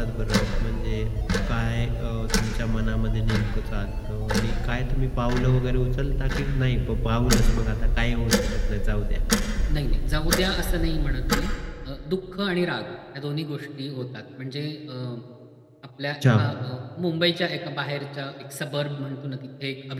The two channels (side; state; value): both; identical; correlation 1.00